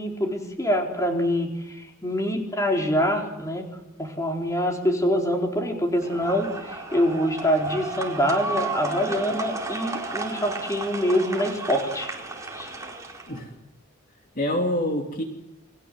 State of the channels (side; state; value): both; normal; correlation 0.50